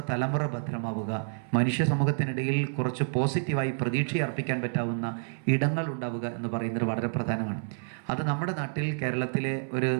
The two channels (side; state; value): left; silent; 59 dB below the other